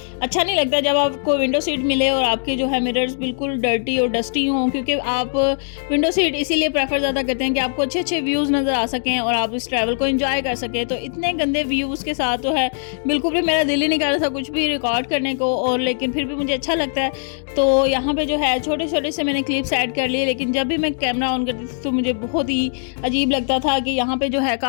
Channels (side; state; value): right; silent; digital silence